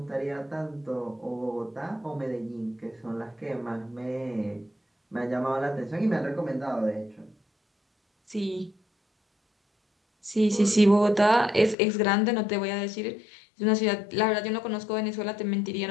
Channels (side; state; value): right; drops out; at 11.8 s